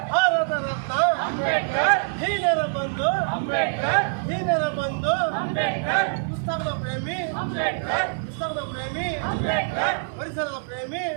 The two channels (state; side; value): silent; left; digital silence